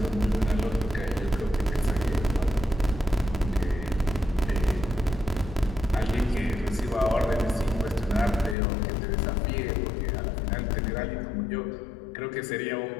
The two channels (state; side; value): drops out; right; at 8.6 s